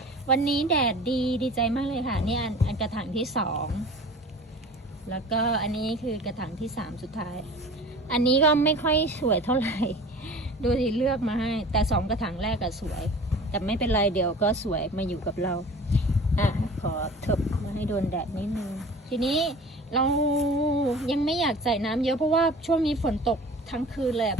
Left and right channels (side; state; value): both; normal; correlation 0.42